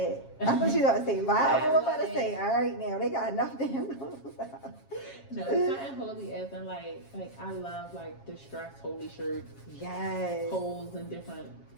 I thought you were about to say Bible. I'm about to say, all right now, they got enough damn. No, it's not holy as in like I love like distressed holy shirts. Yes. Holes in different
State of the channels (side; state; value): right; late; 7.4 ms